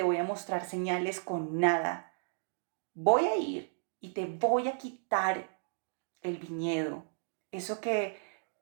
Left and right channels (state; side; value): silent; left; digital silence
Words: voy a mostrar señales con nada. Voy a ir y te voy a quitar el viñedo, eso que